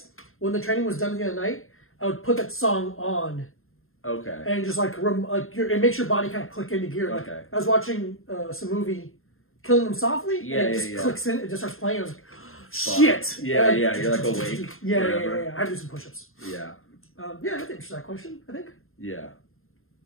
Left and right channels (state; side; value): late; right; 0.61 ms